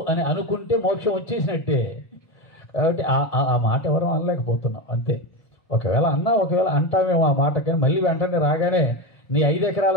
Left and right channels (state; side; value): late; right; 1.8 ms